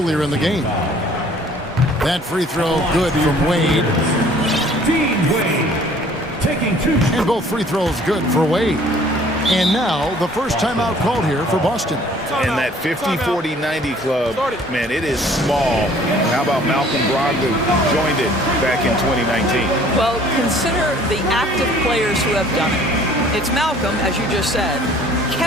in the game. That free throw good from Wade. And both free throws good for Wade. And now the first timeout called here for Boston. And that 50-40-90 club, man, it is small. How about Malcolm Brogdon joined it back in 2019? Well, consider the active players who have done it. It's Malcolm, as you just said,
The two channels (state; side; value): normal; both; correlation 0.54